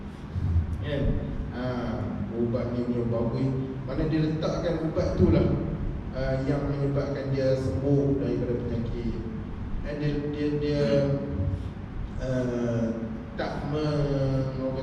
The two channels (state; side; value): identical; both; correlation 1.00